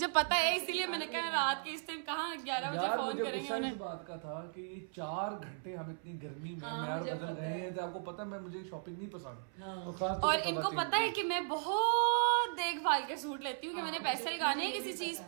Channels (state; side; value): silent; left; 53 dB below the other